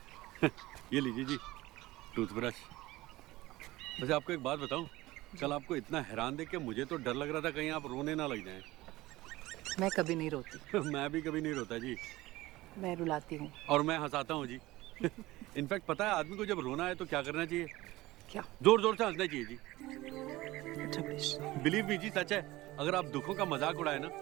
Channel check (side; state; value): left; quieter; 18.5 dB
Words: ये लीजिए जी टूथब्रश। वैसे आपको एक बात बताऊं, कल आपको इतना हैरान देख के मुझे तो डर लग रहा था कहीं आप रोने ना लग जाएं। मैं कभी नहीं रोती। मैं भी कभी नहीं रोता जी। मैं रुलाती हूँ। और मैं हंसाता हूँ जी। इनफैक्ट पता है आदमी को जब रोना है तो क्या करना चाहिए? क्या? जोर जोर से हंसना चाहिए जी। अच्छा बिलीव मी जी, सच है। अगर आप दुखों का मजाक उड़ाए ना